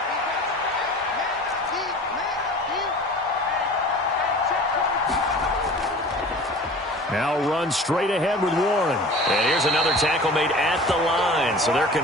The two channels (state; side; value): normal; both; correlation 0.41